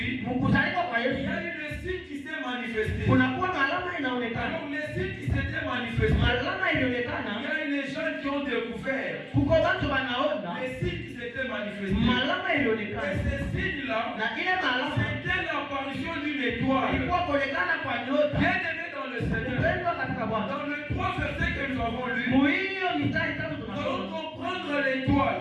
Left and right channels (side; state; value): both; identical; correlation 1.00